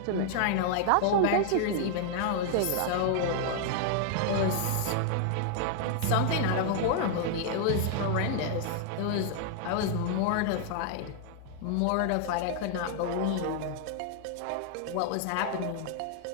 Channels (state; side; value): different; both; correlation 0.00